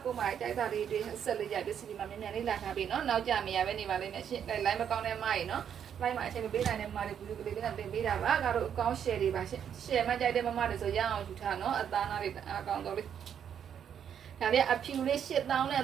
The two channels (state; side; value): quieter; left; 8.5 dB